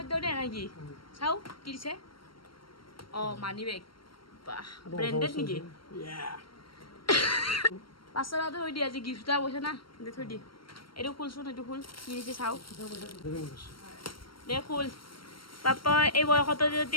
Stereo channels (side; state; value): right; late; 0.73 ms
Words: দিওঁ দে নেকি চাওঁ কি দিছে অঁ মানি বেগ বাহ ব্ৰেণ্ডেড নেকি 500 টকাটো থৈ দি আজি গিফ্ট এটা কৈছে না দে থৈ দি এইটো খুলচোন এইটো খুল কি দিছে চাওঁ দে খুল পাপা এই বয়সতো